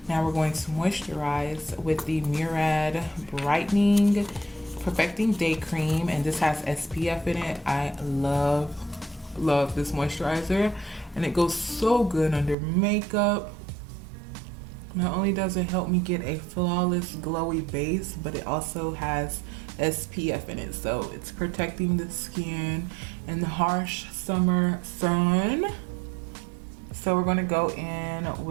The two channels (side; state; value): left; drops out; at 12.6 s